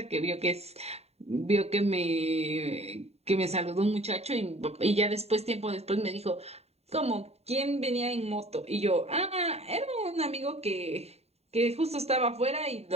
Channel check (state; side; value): late; left; 0.30 ms